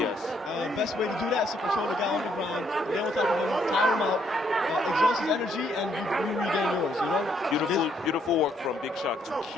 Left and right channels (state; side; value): normal; both; correlation 0.71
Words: Yes. Best way to do that is to control the guy on the ground, get on top of him, tire him out, exhaust his energy, and you regain yours, Beautiful work from Big Shark to